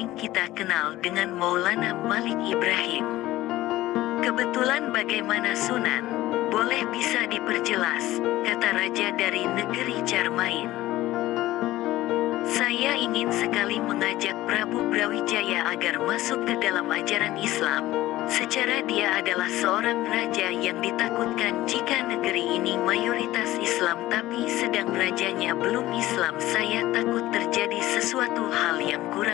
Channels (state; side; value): quieter; right; 16.3 dB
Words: kita kenal dengan Maulana Malik Ibrahim. Kebetulan bagaimana Sunan? Boleh bisa diperjelas, kata raja dari negeri Carmain. Saya ingin sekali mengajak Prabu Brawijaya agar masuk ke dalam ajaran Islam. Secara dia adalah seorang raja yang ditakutkan jika negeri ini mayoritas Islam tapi sedang rajanya belum Islam. Saya takut terjadi sesuatu hal yang